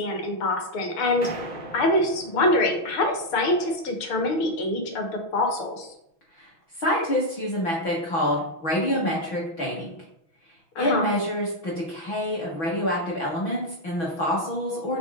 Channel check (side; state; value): right; late; 6.2 ms